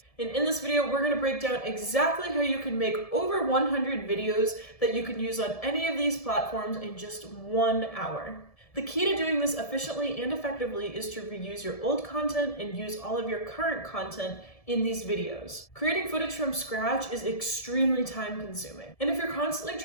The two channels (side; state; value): right; late; 1.7 ms